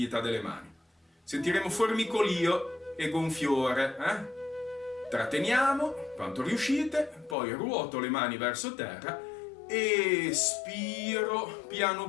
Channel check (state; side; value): drops out; right; at 7.4 s